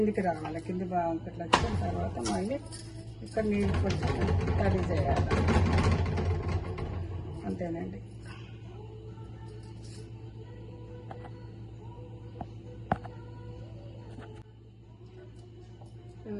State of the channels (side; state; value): both; identical; correlation 1.00